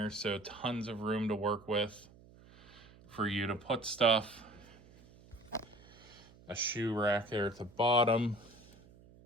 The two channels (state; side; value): noise; right; hum, 23 dB below the sound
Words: so tons of room to work with for you to put stuff. A shoe rack there at the bottom.